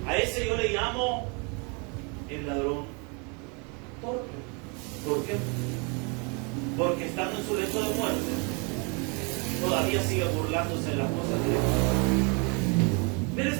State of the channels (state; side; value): quieter; left; 33.4 dB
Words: A ese yo le llamo el ladrón torpe. ¿Por qué? Porque estando en su lecho de muerte, todavía sigue burlándose de las cosas de Dios. Pero